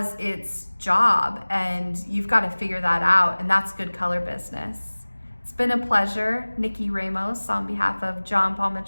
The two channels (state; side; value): inverted; both; correlation -1.00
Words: its job and you've got to figure that out, and that's good color business. It's been a pleasure. NikkiRamos on behalf of John Paul